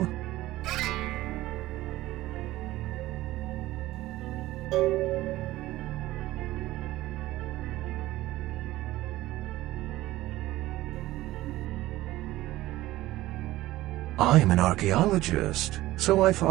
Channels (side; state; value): left; quieter; 16.7 dB